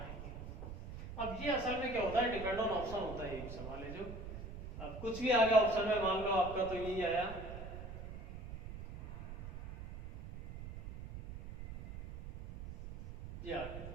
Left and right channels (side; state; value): right; noise; rumble, 10 dB below the sound